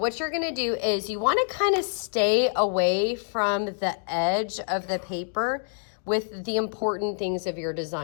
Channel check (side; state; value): right; silent; digital silence